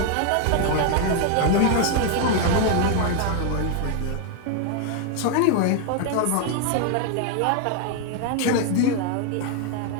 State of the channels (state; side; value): different; both; correlation 0.00